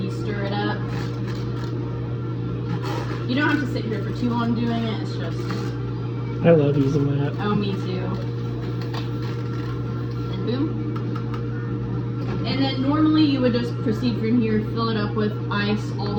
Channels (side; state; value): both; identical; correlation 1.00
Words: stir it up. You don't have to sit here for too long doing it. It's just. I love using that. Oh, me too. And boom. And then normally you would just proceed from here, fill it up with ice all